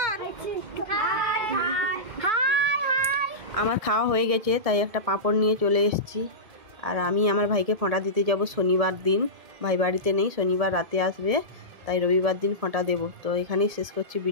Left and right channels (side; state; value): left; late; 1.7 ms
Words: আমার খাওয়া হয়ে গেছে, তাই একটা পাঁপড় নিয়ে চলে এসেছি। আর আমি আমার ভাইকে ফোঁটা দিতে যাব শনিবার দিন। ভাই বাড়িতে নেই, শনিবার রাতে আসবে, তাই রবিবার দিন ফোঁটা দেবো। তো এখানেই শেষ করছি